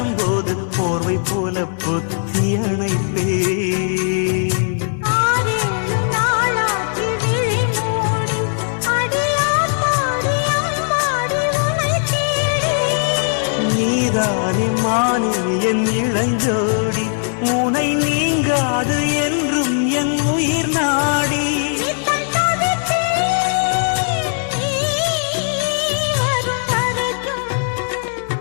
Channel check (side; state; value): right; silent; 58 dB below the other